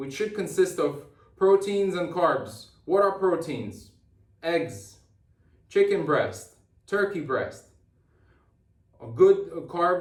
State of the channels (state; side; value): identical; both; correlation 1.00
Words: should consist of proteins and carbs. What are proteins? Eggs, chicken breast, turkey breast. A good